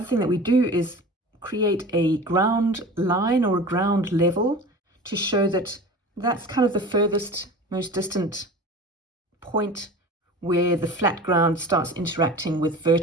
thing that we do is create a ground line or a ground level to show that that's kind of the furthest, most distant point where the flat ground starts interacting with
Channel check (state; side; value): normal; both; correlation 0.37